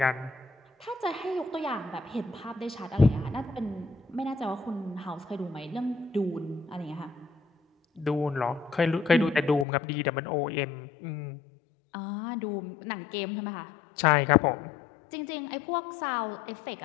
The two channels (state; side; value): drops out; right; at 9.7 s